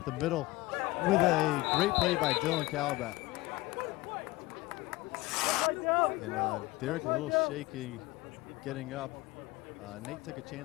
the middle with a great play by Dylan Calabat. And Derek a little shaky getting up. Nate took a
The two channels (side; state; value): right; quieter; 20.3 dB